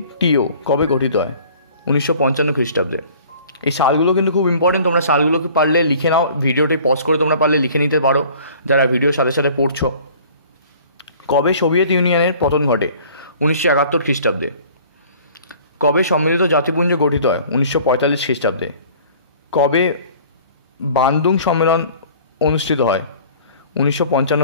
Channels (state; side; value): inverted; both; correlation -0.50